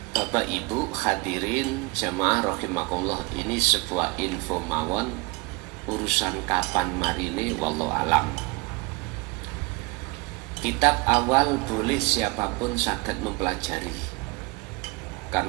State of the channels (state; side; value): quieter; left; 26.2 dB